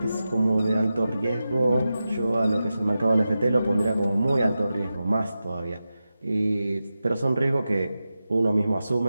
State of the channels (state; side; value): inverted; both; correlation -0.92